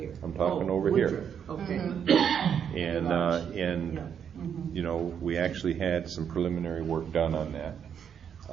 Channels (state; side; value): quieter; left; 8.0 dB